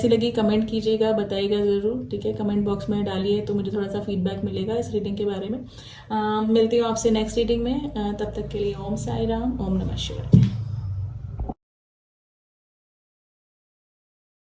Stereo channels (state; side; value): identical; both; correlation 1.00